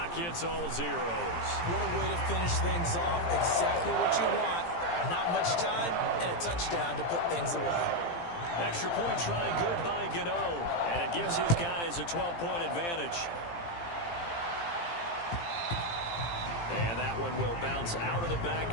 hits all zeros. What a way to finish things off. Exactly what you want. Not much time and a touchdown to put things away. Extra point try good by Gano. And it gives his guys a 12-point advantage. And that one will bounce out of the back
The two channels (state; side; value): late; right; 17 ms